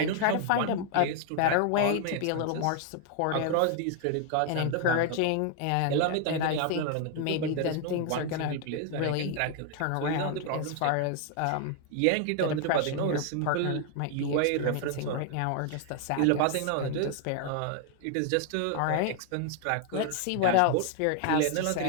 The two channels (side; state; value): both; different; correlation 0.00